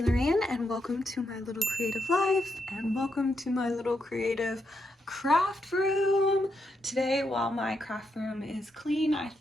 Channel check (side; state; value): both; normal; correlation 0.81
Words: and welcome to my little creative life and welcome to my little creative craft room. Today, while my craft room is clean, I